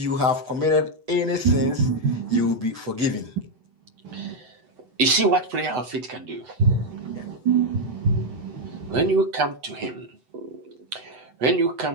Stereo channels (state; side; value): late; left; 8.0 ms